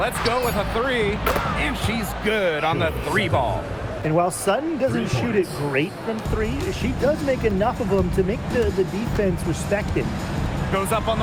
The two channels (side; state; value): both; identical; correlation 1.00